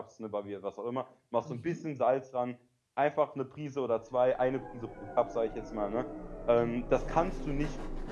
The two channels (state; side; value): identical; both; correlation 1.00